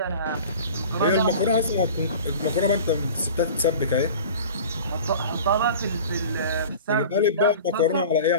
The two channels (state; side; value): inverted; both; correlation -0.39